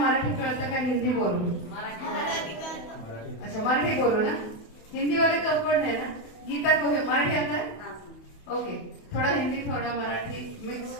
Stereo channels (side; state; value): right; late; 28 ms